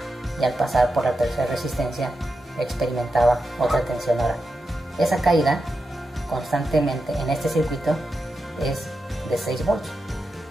y al pasar por la tercera resistencia experimentaba otra tensión. Ahora, esa caída constantemente en este circuito es de 6 volts.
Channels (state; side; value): normal; both; correlation 0.88